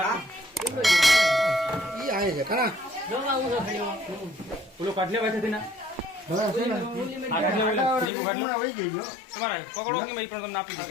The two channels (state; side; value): drops out; right; at 8.1 s